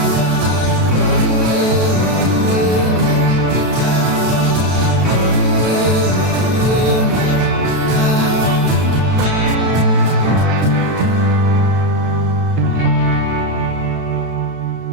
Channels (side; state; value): left; late; 32 ms